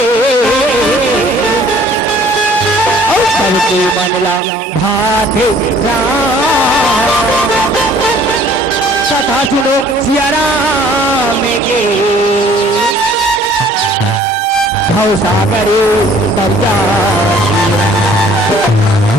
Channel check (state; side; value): normal; both; correlation 0.55